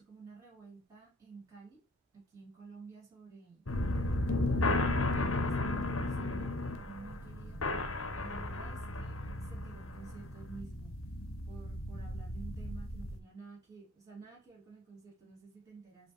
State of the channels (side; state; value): both; normal; correlation 0.53